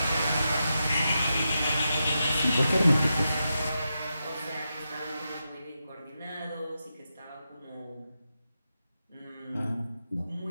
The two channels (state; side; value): inverted; both; correlation -0.88